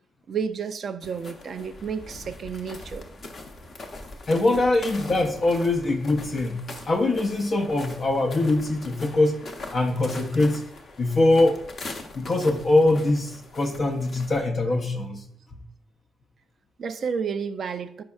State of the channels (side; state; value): both; normal; correlation 0.89